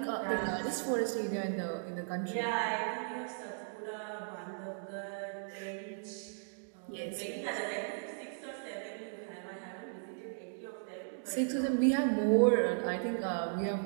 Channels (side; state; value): left; silent; digital silence